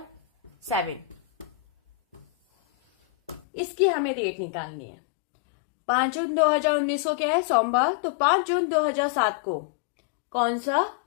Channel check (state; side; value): drops out; right; at 3.4 s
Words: 7। इसकी हमें डेट निकालनी है। 5 जून 2019 को क्या है? सोमवार। तो 5 जून 2007 को कौन सा